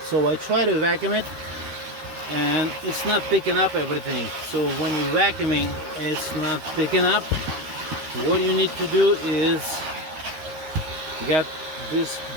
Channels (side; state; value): left; late; 13 ms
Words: So I try to vacuum it, and it's not picking up everything. So when you're vacuuming, it's not picking up. What you need to do is get this